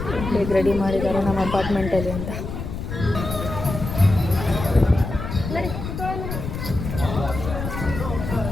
ಬೇಗ ರೆಡಿ ಮಾಡಿದ್ದಾರೆ ನಮ್ಮ ಅಪಾರ್ಟ್ಮೆಂಟಲ್ಲಿ ಅಂತ.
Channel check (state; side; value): noise; left; rumble, 6 dB below the sound